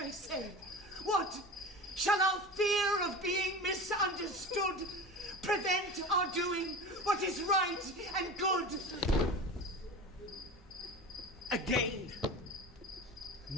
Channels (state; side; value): normal; both; correlation 0.32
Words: say. What? Shall our fear of being misunderstood prevent our doing what is right and good? Again,